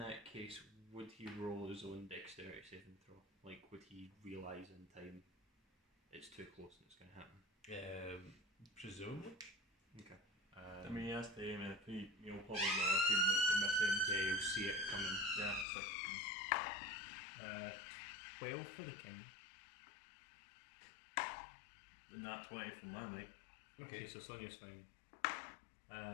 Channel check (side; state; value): right; drops out; at 15.7 s